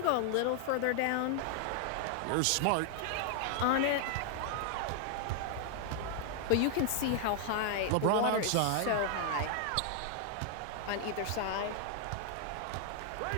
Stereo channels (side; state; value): both; different; correlation 0.00